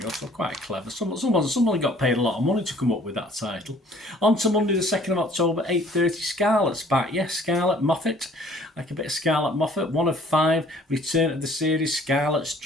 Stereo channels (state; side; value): normal; both; correlation 0.56